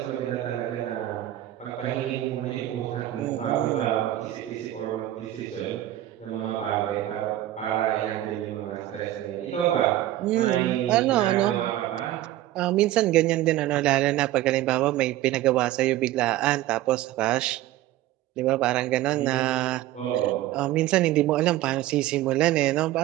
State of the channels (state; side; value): quieter; left; 14.5 dB